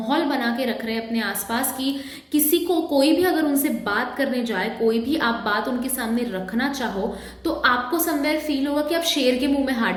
बना के रख रहे हैं अपने आसपास कि किसी को कोई भी अगर उनसे बात करने जाए, कोई भी आप बात उनके सामने रखना चाहो, तो आपको समवेयर फील होगा कि आप शेर के मुंह में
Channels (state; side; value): identical; both; correlation 1.00